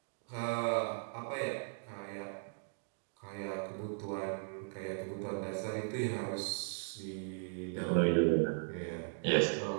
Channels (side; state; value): left; silent; digital silence